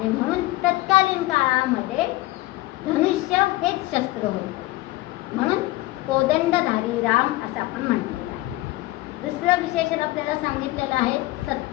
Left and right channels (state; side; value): quieter; right; 18.9 dB